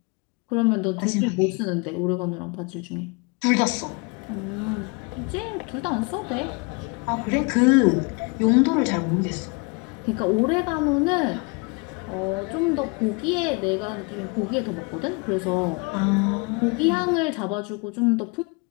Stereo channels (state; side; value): quieter; right; 30.9 dB